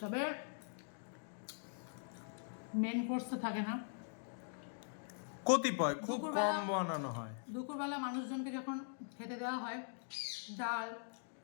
তবে মেন কোর্স তো থাকে না, কতিপয় খুব দুপুরবেলা- কম বানানো হয়। দুপুরবেলা মানুষজনকে যখন খেতে দেওয়া হয় ডাল,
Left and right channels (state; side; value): silent; right; digital silence